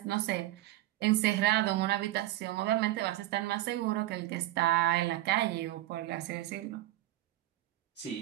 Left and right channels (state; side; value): quieter; left; 15.5 dB